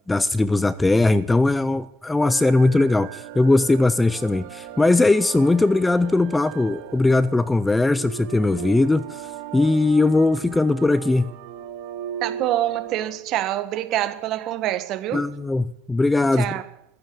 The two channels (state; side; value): normal; both; correlation 0.90